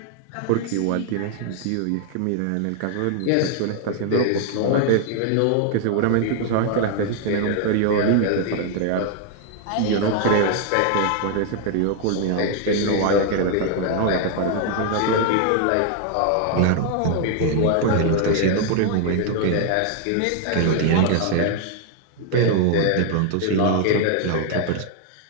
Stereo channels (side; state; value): both; different; correlation 0.00